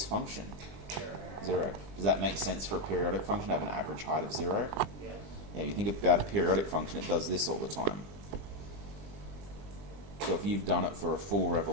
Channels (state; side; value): late; left; 20 ms